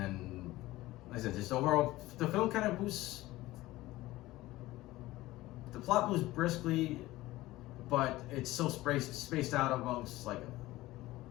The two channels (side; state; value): right; quieter; 17.7 dB